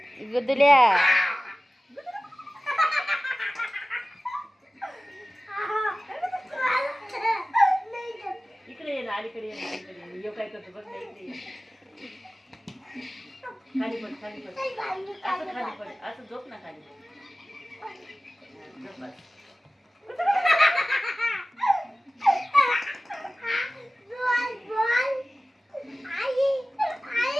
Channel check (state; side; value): normal; both; correlation 0.96